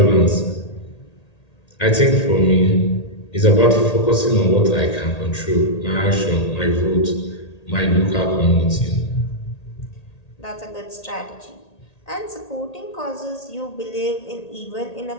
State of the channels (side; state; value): right; late; 1.8 ms